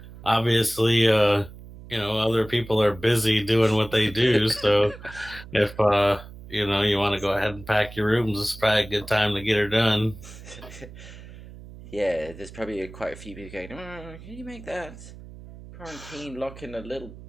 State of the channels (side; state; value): right; noise; hum, 16 dB below the sound